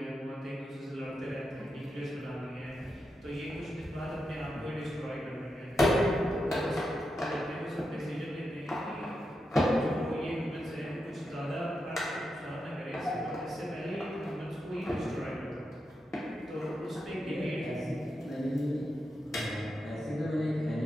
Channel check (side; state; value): both; normal; correlation 0.87